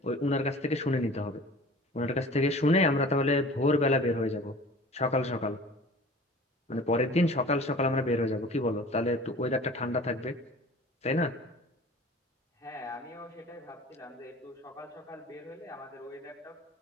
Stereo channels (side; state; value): both; normal; correlation 0.43